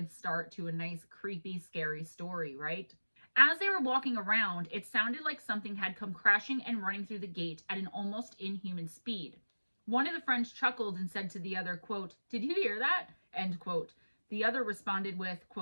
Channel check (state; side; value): inverted; both; correlation -1.00